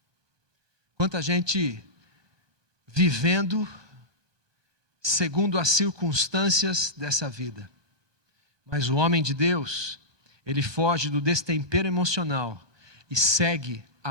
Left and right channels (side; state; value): left; late; 1.2 ms